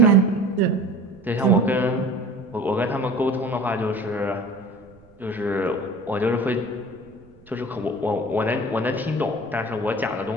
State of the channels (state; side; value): noise; right; rumble, 27 dB below the sound